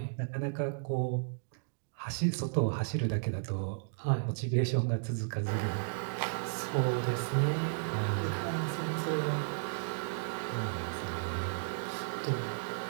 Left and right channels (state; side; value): silent; left; digital silence